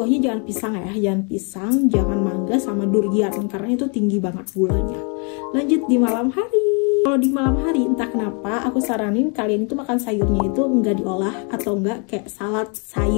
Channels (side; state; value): right; quieter; 36.8 dB